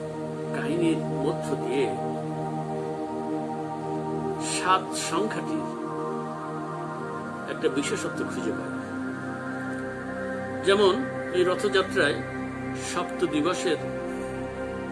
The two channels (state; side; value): identical; both; correlation 1.00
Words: কাহিনীর মধ্য দিয়ে 7 সংখ্যাটির একটা বিশেষত্ব খুঁজে পাই। যেমন এই রথযাত্রায় 7 দিবসের